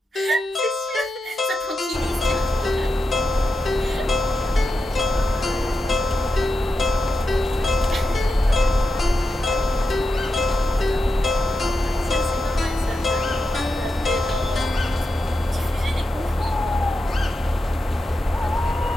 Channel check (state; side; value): normal; both; correlation 0.88